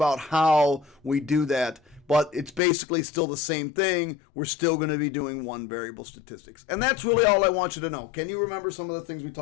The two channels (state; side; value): drops out; right; at 2.6 s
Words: how we do that. But it's basically still the same thing. We're still going to be doing one variable statistics. And that's really all I want you to know. Can you remember some of the things we